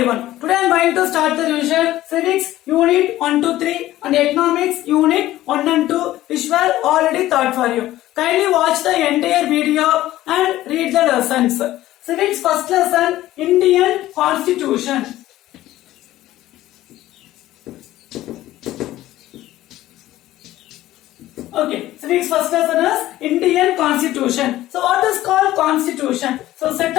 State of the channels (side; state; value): right; quieter; 15.1 dB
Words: Today I am going to start the revision Civics Unit 1 to 3 and Economics Unit 1 and 2 which were already taught for you. Kindly watch the entire video and read the lessons. Civics first lesson, Indian Constitution. Okay, civics first lesson is Indian Constitution. So what is called Constitution? So set